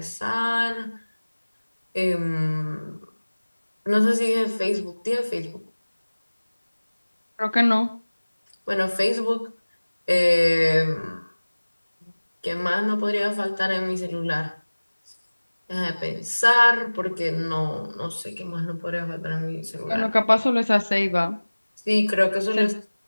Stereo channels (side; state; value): both; inverted; correlation -1.00